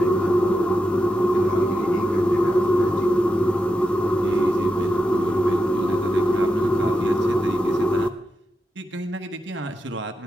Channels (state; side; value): normal; both; correlation 0.88